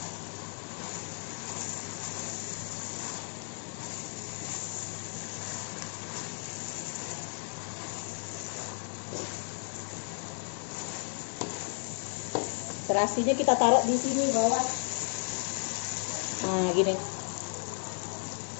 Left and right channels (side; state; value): right; silent; 55 dB below the other